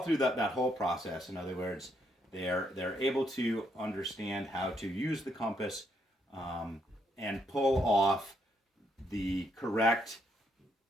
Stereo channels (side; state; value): both; normal; correlation 0.75